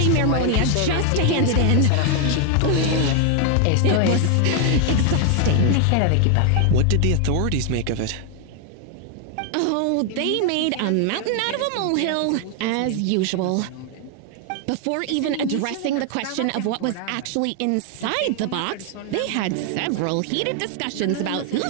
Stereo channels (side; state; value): both; different; correlation 0.00